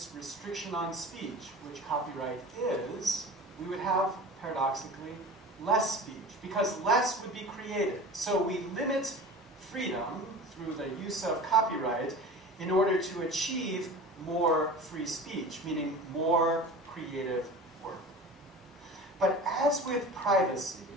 restriction on speech, which copyright is, we would have, paradoxically, less speech, because less would be created. So we limit freedom through the use of copyright in order to achieve more free speech, meaning more creative work. But as with privacy,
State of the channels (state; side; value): normal; both; correlation 0.36